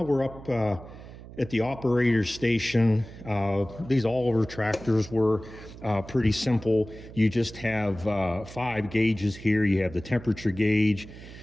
we're up at the operator station. These Oliver tractors were pretty simple. You just have 5 gauges here. You have the temperature gauge,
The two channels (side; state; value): right; noise; hum, 16 dB below the sound